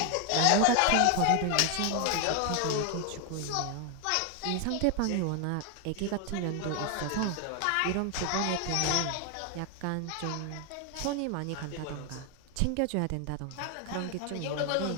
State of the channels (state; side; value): different; both; correlation 0.00